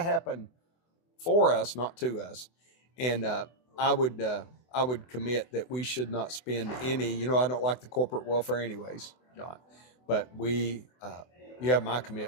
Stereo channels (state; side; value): late; right; 24 ms